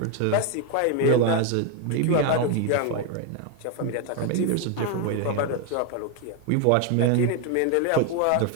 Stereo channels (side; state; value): both; different; correlation 0.01